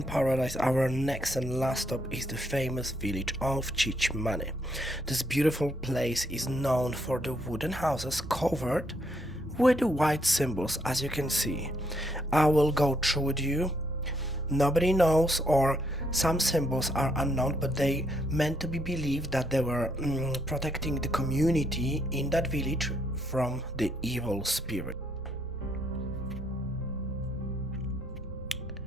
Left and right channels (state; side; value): normal; both; correlation 0.73